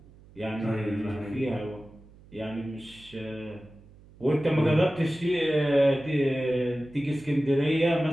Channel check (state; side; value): noise; right; hum, 24 dB below the sound